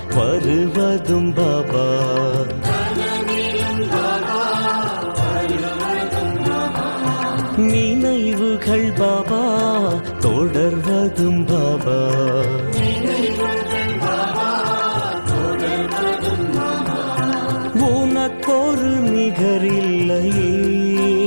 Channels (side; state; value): both; inverted; correlation -1.00